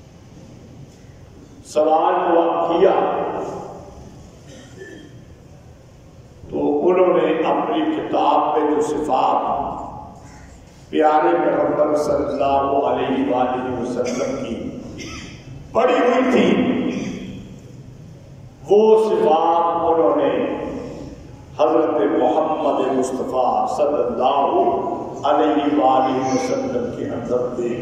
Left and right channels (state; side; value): identical; both; correlation 1.00